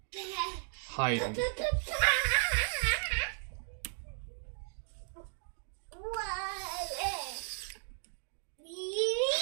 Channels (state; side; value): silent; left; digital silence